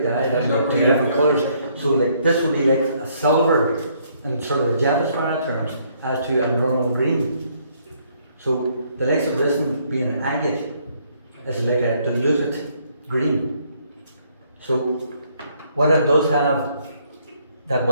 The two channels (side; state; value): both; inverted; correlation -0.68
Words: I don't know, 2 different colours. So like this would be like a silver in sort of the Davidsbirdroom terms, as to a normal green. So the likes of this one being an agate is like a diluted green. So what it does have, that